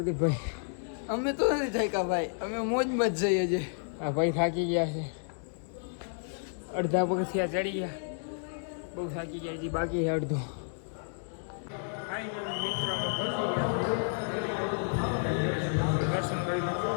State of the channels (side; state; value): right; silent; digital silence